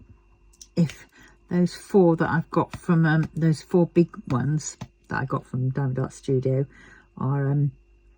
if those 4 that I've got from those 4 big ones that I got from Diamond Art Studio are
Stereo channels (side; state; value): both; identical; correlation 1.00